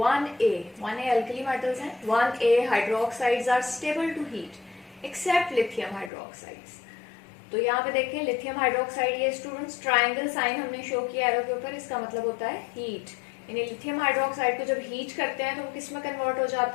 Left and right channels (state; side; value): drops out; right; at 6.1 s